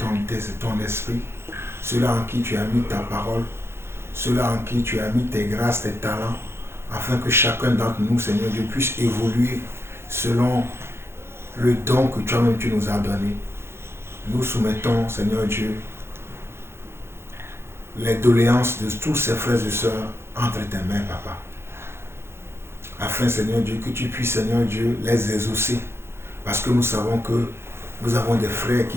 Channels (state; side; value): late; left; 0.12 ms